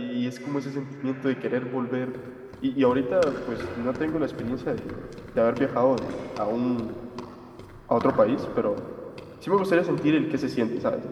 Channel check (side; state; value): both; identical; correlation 1.00